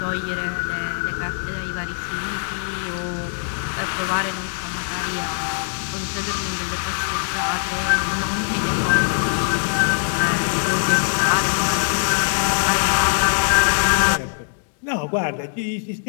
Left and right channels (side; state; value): right; silent; digital silence